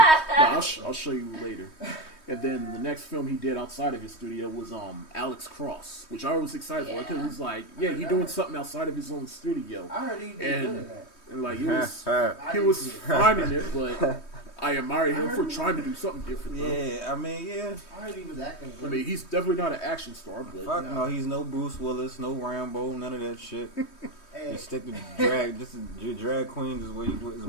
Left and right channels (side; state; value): right; late; 3.2 ms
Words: I'll show you later. And then the next film he did outside of his studio was Alex Cross, which I was excited for because it was like, yeah, he doing something outside of his own studio, I heard he did And- good at that. and like I he didn't was see it. fine in it, but I admire him for trying to do something different. Though. Yeah, I mean, yeah. I heard he was acting I good. mean, he's definitely not an action star, but Fuck no, he's no Bruce Willis, no Rambo, none of that shit. Hey, You stick to drag. Just your drag queens is where